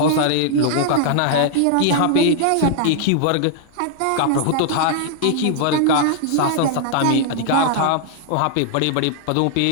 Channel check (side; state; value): both; different; correlation 0.00